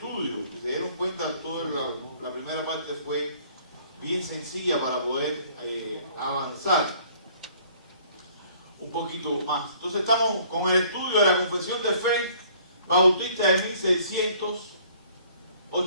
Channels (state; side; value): inverted; both; correlation -0.57